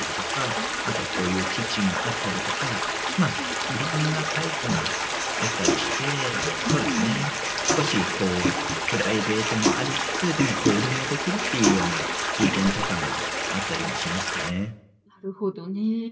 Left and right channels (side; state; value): both; identical; correlation 1.00